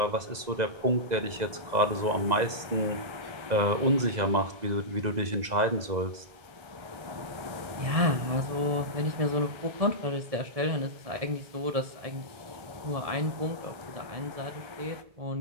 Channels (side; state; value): left; late; 2.0 ms